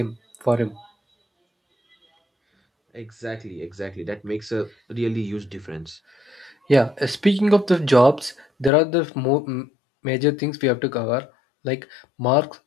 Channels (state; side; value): drops out; right; at 8.7 s